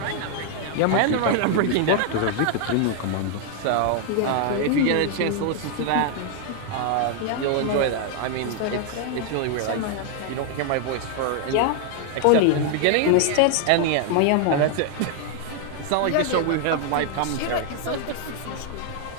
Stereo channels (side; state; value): both; different; correlation 0.00